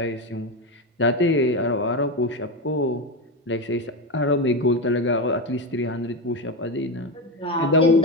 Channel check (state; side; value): normal; both; correlation 0.15